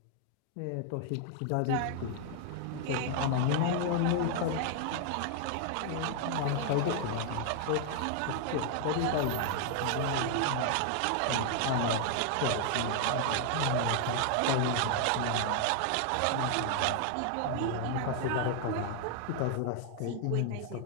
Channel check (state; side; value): different; both; correlation 0.00